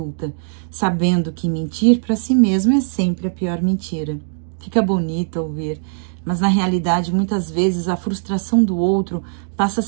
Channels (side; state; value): left; silent; digital silence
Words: sabendo que mentir para si mesmo é sempre a pior mentira. Fica bonito ouvir, mas na realidade, muitas vezes, a frustração do outro passa a